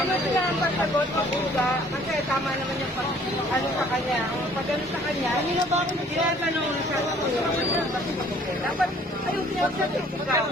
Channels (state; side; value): normal; both; correlation 0.56